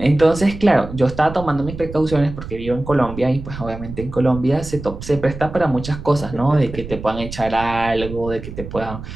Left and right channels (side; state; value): right; noise; rumble, 11 dB below the sound